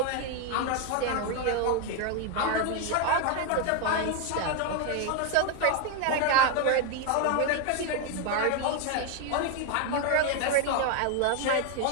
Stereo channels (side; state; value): both; different; correlation 0.01